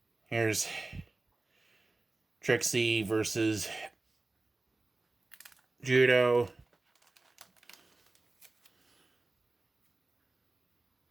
Here's Trixie versus Judo.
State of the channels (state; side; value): quieter; left; 3.2 dB